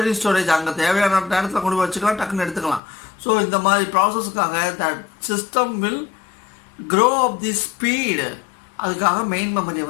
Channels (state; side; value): drops out; right; at 2.8 s